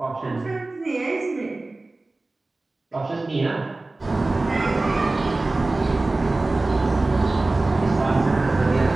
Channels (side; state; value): left; quieter; 3.1 dB